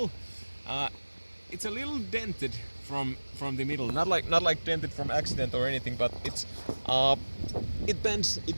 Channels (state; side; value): inverted; both; correlation -1.00